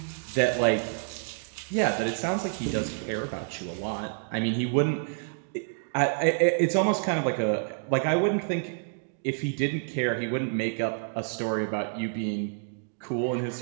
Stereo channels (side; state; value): left; silent; digital silence